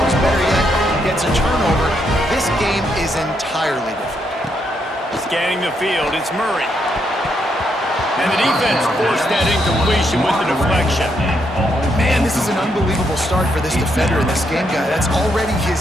better yet, gets a turnover. This game is entirely different. Scanning the field, it's Murray. And the defense forced that incompletion with the deflection. Man, this is an unbelievable start for this defender in this game, guy. That's already his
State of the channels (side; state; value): both; normal; correlation 0.77